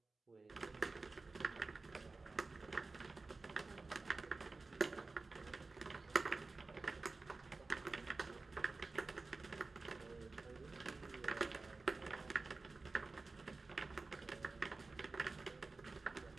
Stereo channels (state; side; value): quieter; left; 3.7 dB